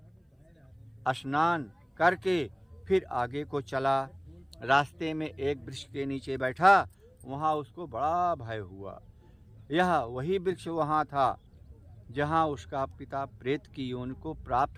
स्नान करके फिर आगे को चला। रास्ते में एक वृक्ष के नीचे बैठा, वहाँ उसको बड़ा भय हुआ। यह वही वृक्ष वहाँ था जहाँ उसका पिता प्रेत की योनि को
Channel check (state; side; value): identical; both; correlation 1.00